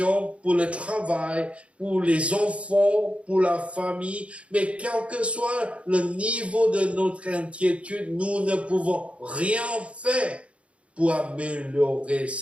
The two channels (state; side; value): late; left; 0.062 ms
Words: pour le travail, pour les enfants, pour la famille. Mais quel que soit le niveau de notre inquiétude, nous ne pouvons rien faire pour améliorer